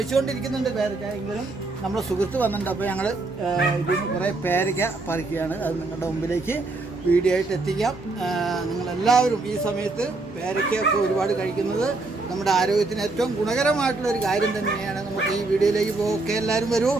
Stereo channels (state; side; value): quieter; left; 3.4 dB